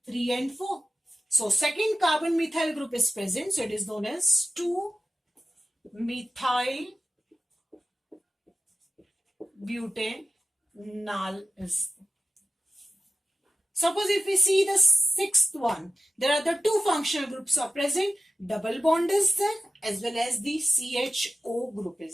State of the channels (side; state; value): both; normal; correlation 0.93